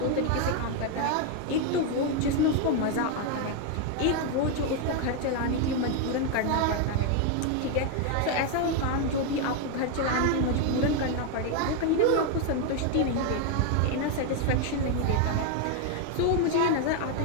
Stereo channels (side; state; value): both; different; correlation 0.01